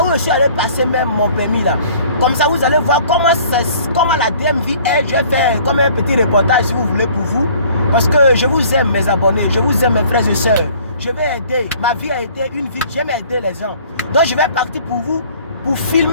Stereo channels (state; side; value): inverted; both; correlation -0.53